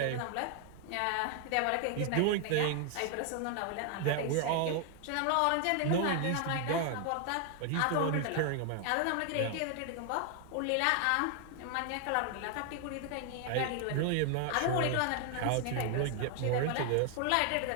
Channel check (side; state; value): both; different; correlation 0.00